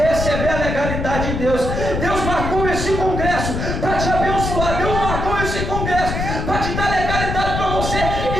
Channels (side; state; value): left; noise; rumble, 3 dB below the sound